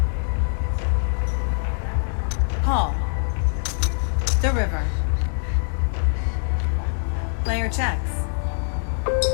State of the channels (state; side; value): silent; right; 63 dB below the other